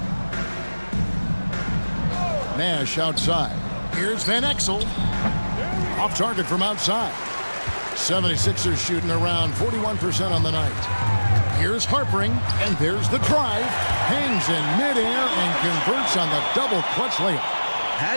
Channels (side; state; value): both; inverted; correlation -1.00